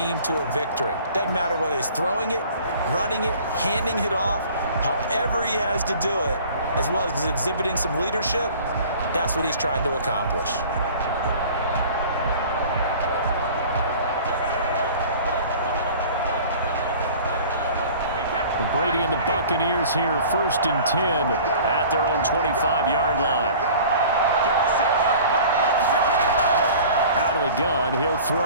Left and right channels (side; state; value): both; inverted; correlation -0.46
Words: to a victory. Doesn't matter whether he's throwing it, running it, handing it off, however he has to do it, as well as exhibiting some leadership, that's what he's trying to accomplish. Brady and the Buccaneers here, 1st and 10 at their own 25-yard line. Out of the gun, he'll